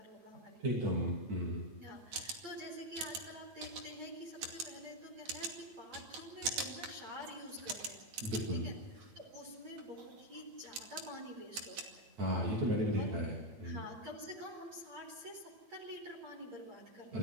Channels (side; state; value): left; late; 9.2 ms